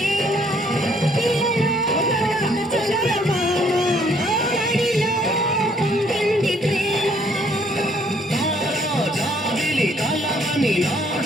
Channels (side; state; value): both; normal; correlation 0.64